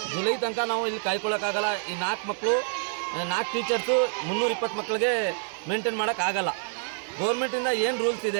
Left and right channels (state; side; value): silent; left; digital silence